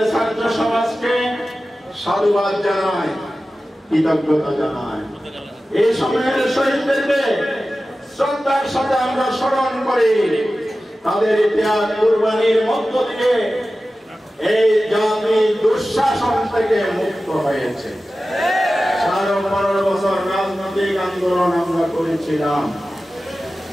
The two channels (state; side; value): normal; both; correlation 0.95